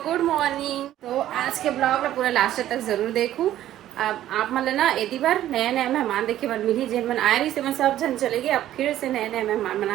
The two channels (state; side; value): quieter; left; 12.8 dB